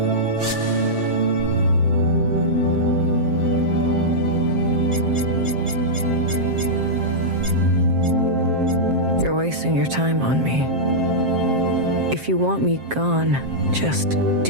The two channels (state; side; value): late; left; 7.6 ms